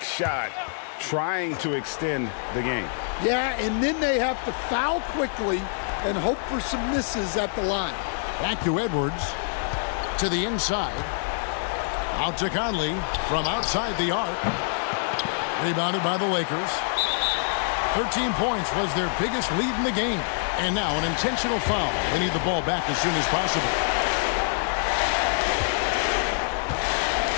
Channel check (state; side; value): silent; right; digital silence